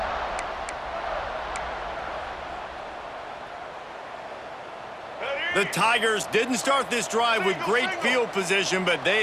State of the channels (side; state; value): both; identical; correlation 1.00